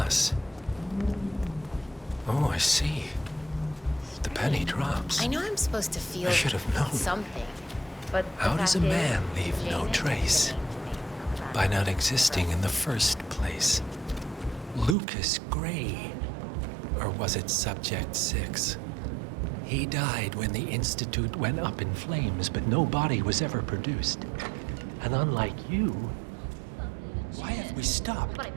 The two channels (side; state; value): left; drops out; at 15.0 s